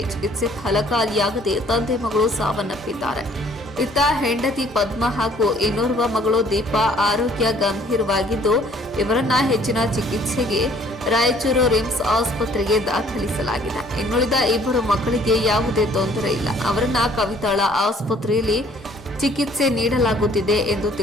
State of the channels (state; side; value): normal; both; correlation 0.58